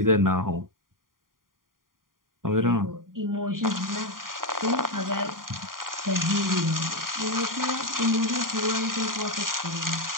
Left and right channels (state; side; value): late; left; 0.91 ms